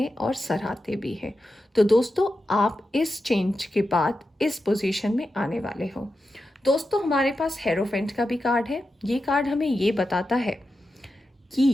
और सराहते भी हैं। तो दोस्तों, आप इस चेंज के बाद इस पोजीशन में आने वाले हो। दोस्तों, हमारे पास हेरोफेंट का भी कार्ड है। ये कार्ड हमें ये बताता है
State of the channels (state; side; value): normal; both; correlation 0.90